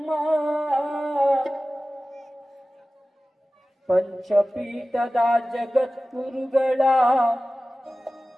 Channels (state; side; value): normal; both; correlation 0.96